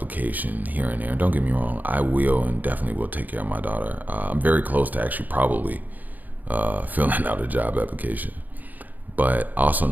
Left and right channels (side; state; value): left; late; 0.083 ms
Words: here and there. Don't get me wrong, I will and definitely will take care of my daughter. I'm very close to actually probably filling out a job application. But I also